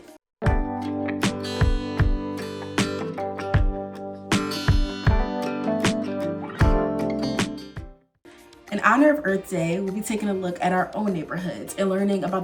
In honor of Earth Day, we'll be taking a look at our own neighborhoods and learning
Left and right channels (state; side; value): identical; both; correlation 1.00